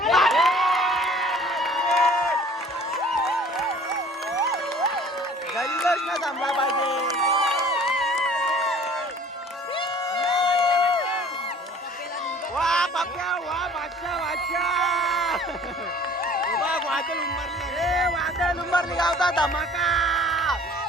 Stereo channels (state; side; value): normal; both; correlation 0.50